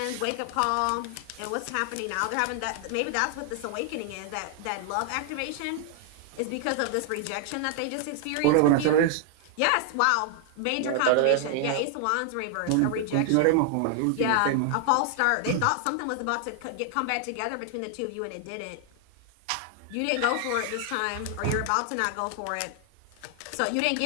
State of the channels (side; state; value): both; different; correlation 0.00